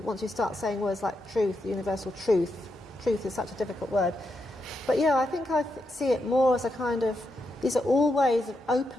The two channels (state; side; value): normal; both; correlation 0.84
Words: once you start saying words like truth, universal truth. Truth is such a difficult word. But I think I see it more as a kind of, these are all ways of